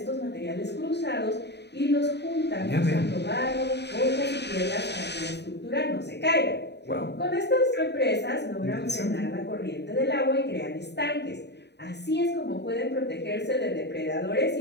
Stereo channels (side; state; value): right; late; 0.50 ms